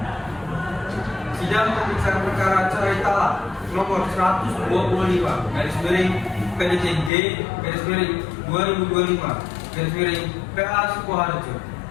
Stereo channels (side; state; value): right; drops out; at 7.1 s